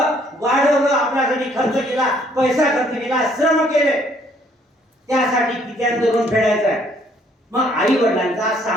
वाढवलं, आपल्यासाठी खर्च केला, पैसा खर्च केला, श्रम केले. त्यासाठी कित्यांचं ऋण फेडायचं आहे. मग आई वडिलांचा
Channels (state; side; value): normal; both; correlation 0.64